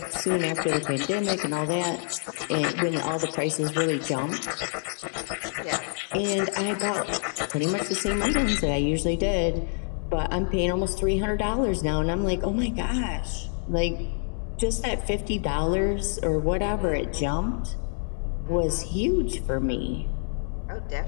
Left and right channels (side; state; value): right; silent; 60 dB below the other